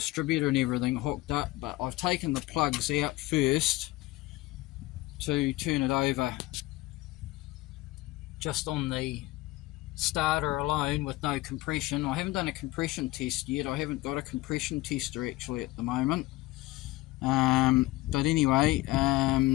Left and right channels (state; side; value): quieter; right; 19.2 dB